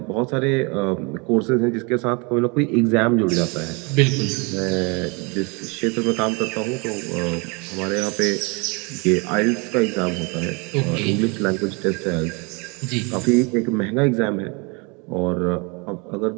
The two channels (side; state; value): left; quieter; 30.4 dB